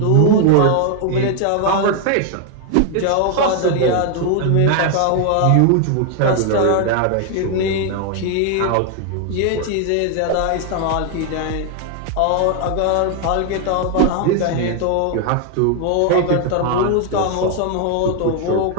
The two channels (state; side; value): different; both; correlation 0.00